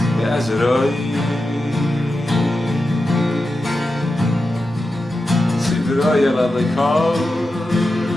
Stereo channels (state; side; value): normal; both; correlation 0.90